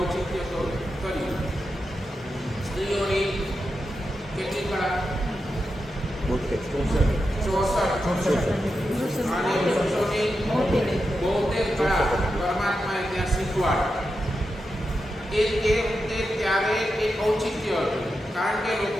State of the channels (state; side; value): normal; both; correlation 0.88